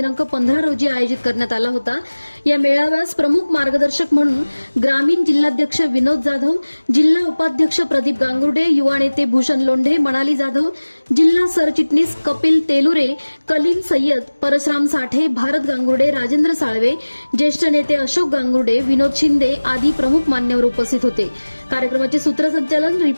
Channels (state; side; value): inverted; both; correlation -1.00